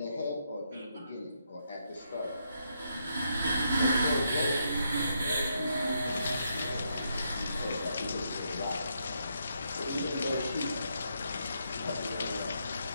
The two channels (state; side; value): inverted; both; correlation -0.78